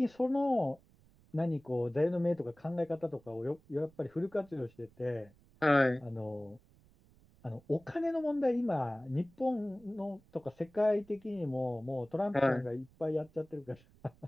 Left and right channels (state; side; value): noise; right; rumble, 28 dB below the sound